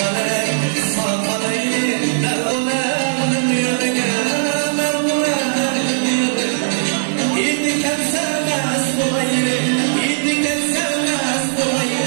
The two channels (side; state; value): left; silent; digital silence